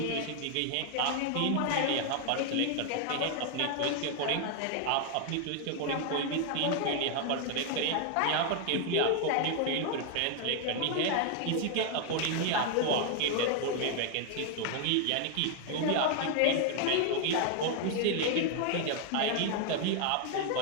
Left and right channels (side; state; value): both; different; correlation 0.00